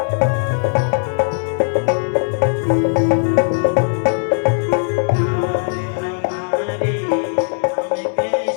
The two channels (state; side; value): silent; right; digital silence